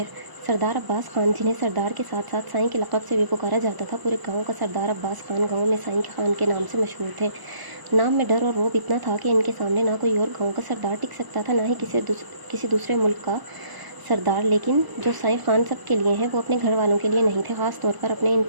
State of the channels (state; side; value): late; left; 1.0 ms